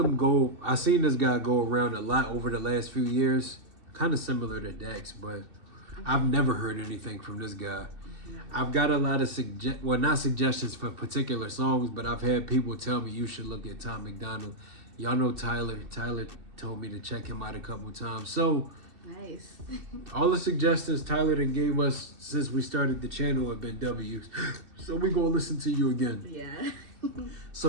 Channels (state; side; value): late; left; 2.7 ms